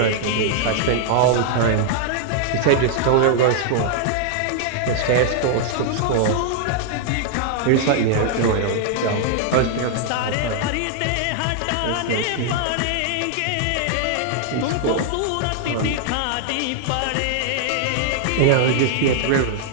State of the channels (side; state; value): both; different; correlation 0.00